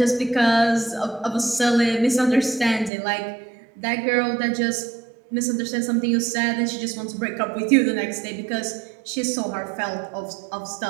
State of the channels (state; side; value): drops out; left; at 2.9 s